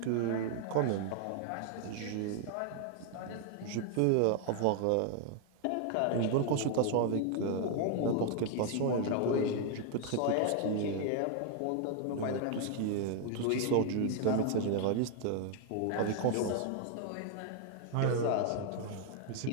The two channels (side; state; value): both; different; correlation 0.00